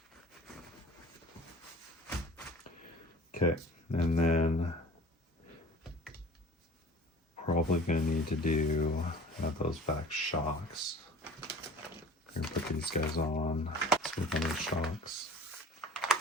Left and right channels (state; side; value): normal; both; correlation 0.44